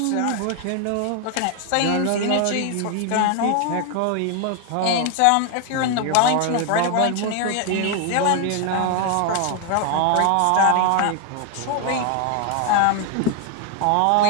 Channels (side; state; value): both; different; correlation 0.01